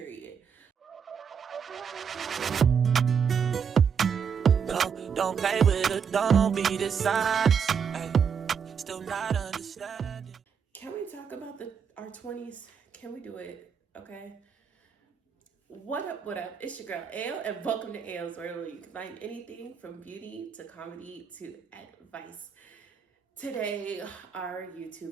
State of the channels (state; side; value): quieter; left; 6.8 dB